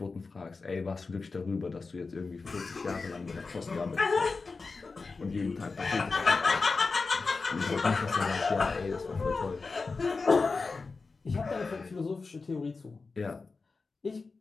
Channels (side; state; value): right; quieter; 4.2 dB